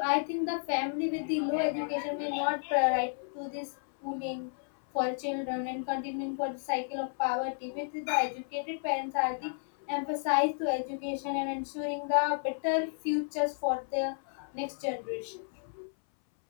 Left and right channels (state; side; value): silent; right; 56 dB below the other